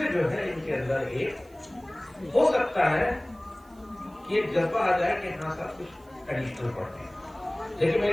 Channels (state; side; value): noise; right; hiss, 30 dB below the sound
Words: जो है इनके अंदर एक हो सकता है कि एक जज्बा आ जाए कि हाँ सब कुछ एडिशनल पढ़ते हैं। लेकिन मैं